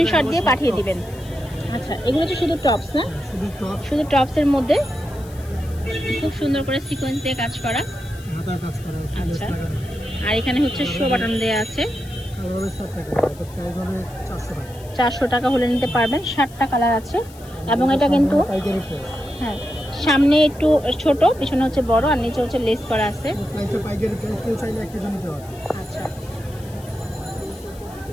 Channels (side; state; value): left; noise; hiss, 22 dB below the sound